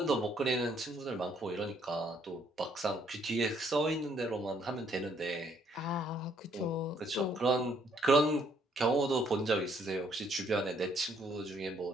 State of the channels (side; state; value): both; normal; correlation 0.67